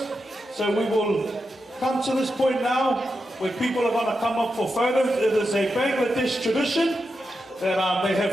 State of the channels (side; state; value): both; normal; correlation 0.88